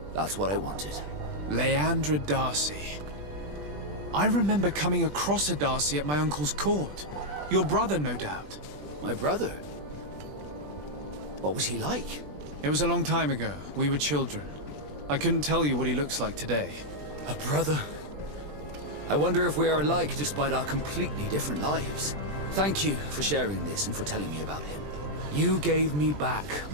that's what I wanted. Leandra Darcy. I remember coming across a Darcy at my uncle's court. Your brother, no doubt. My brother? What was he like? It was a long time ago. We were children. I couldn't tell you what he looks like today. A brother? I wonder if we are alike despite our completely different lives. Thank you for sharing this and for telling me about him. You gave me back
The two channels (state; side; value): late; left; 20 ms